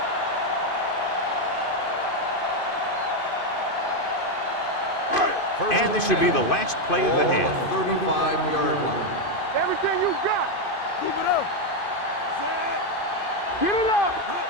And this should be the last play of the half. 35-yard line. Everything you got. Keep it up. Get it up.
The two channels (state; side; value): late; right; 2.5 ms